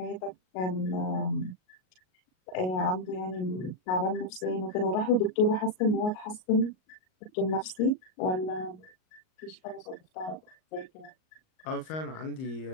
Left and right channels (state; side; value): late; right; 38 ms